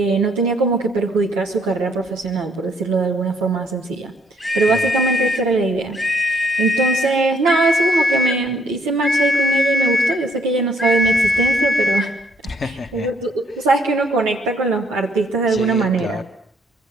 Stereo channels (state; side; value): normal; both; correlation 0.67